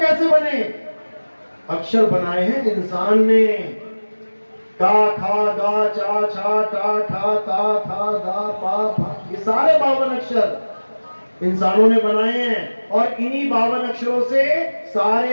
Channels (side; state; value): both; inverted; correlation -1.00